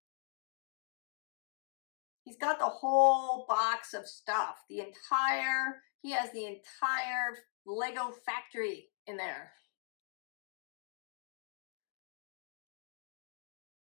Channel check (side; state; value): right; silent; digital silence